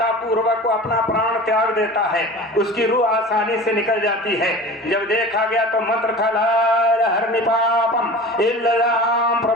पूर्वक को अपना प्राण त्याग देता है, उसकी रूह आसानी से निकल जाती है। जब देखा गया तो मंत्र था ला हरनिपापम इल्लल्लाह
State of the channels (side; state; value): both; normal; correlation 0.37